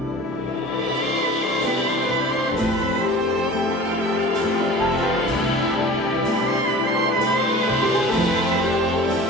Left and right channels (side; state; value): both; normal; correlation 0.42